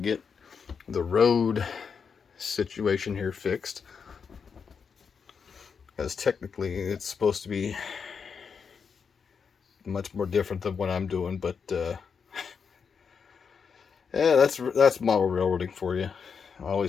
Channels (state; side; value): quieter; right; 6.1 dB